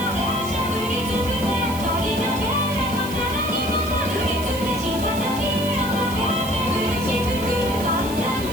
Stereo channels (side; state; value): right; noise; hiss, 13 dB below the sound